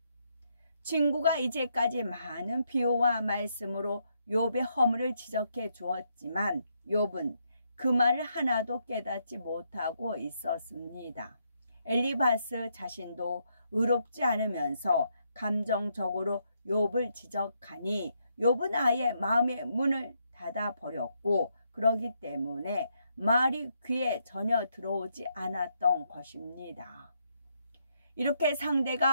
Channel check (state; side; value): inverted; both; correlation -0.77